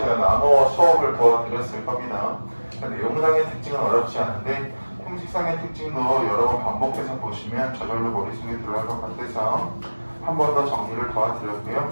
나누어 수업을 도와드렸을 겁니다. 내용상의 특징은 어렵지 않은데 형식상의 특징도 여러 번 반복해서 보시면 저절로 머릿속에 들어갈 것 같아서 한 번 더 정리를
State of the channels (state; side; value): inverted; both; correlation -1.00